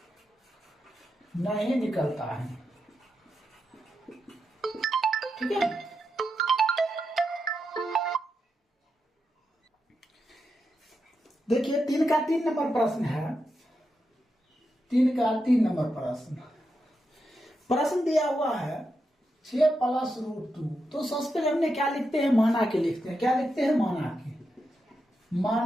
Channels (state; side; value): normal; both; correlation 0.86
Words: नहीं निकलता है, ठीक है। देखिए 3 का 3 नंबर प्रश्न है, 3 का 3 नंबर प्रश्न दिया हुआ है 6 + √2, तो सबसे पहले हमने क्या लिखते हैं, माना के लिखते हैं, क्या लिखते हैं,